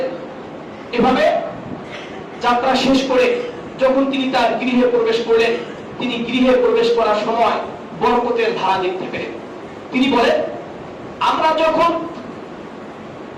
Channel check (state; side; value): identical; both; correlation 1.00